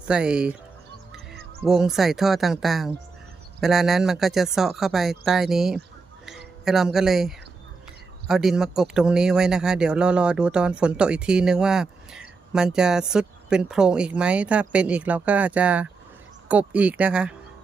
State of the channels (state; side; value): quieter; left; 4.4 dB